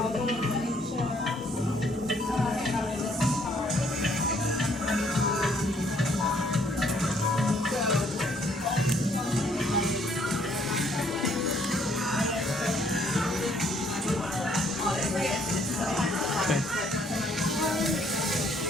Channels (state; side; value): normal; both; correlation 0.65